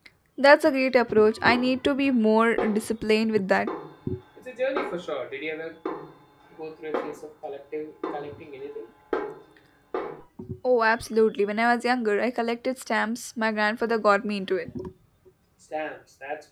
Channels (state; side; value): identical; both; correlation 1.00